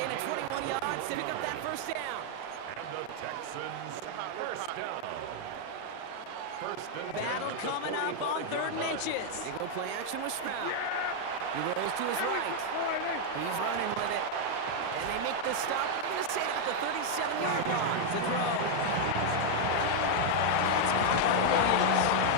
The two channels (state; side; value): different; both; correlation 0.00